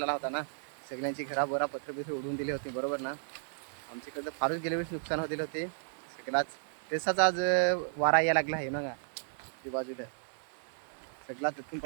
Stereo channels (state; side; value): silent; left; digital silence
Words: आला होता ना, सगळ्यांची घरा बरा पत्र उडवून दिले होते, बरोबर ना. आमच्याकडे फारच गेल्या वर्षी नुकसान होते होते सगळ्याच. तसाच आज वारा यायला लागला आहे ना का ते बाजूला सगळा तिथून